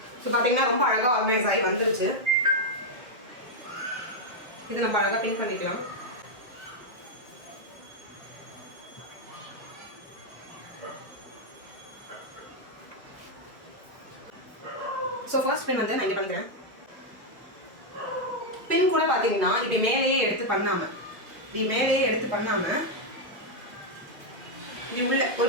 சோ பாத்தீங்கன்னா ரொம்ப அழகா ஆர்கனைஸ் ஆகி வந்துருச்சு. இது நம்ம அழகா பின் பண்ணிக்கலாம். சோ ஃபர்ஸ்ட் பின் வந்து நான் இங்க பண்ணிக்கிறேன். பின் கூட பாத்தீங்கன்னா இப்படி மேலேயே எடுத்து பண்ணாம இப்படி உள்ள ஒரு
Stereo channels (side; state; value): left; late; 1.9 ms